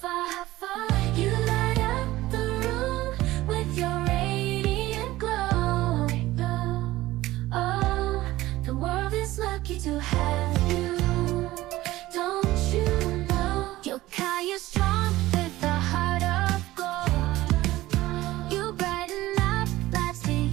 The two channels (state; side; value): quieter; left; 17.0 dB